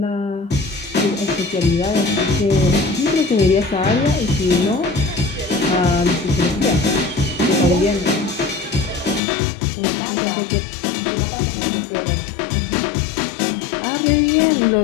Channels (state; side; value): drops out; right; at 9.2 s